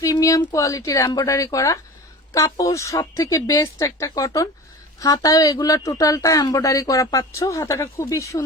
প্রিমিয়াম কোয়ালিটির এমব্রয়ডারি করা কাপড়, সব থেকে বেস্ট একটা কটন। হাতায় এগুলা টোটালটা এমব্রয়ডারি করা পাচ্ছ। হাতাটা খুবই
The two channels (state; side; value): normal; both; correlation 0.35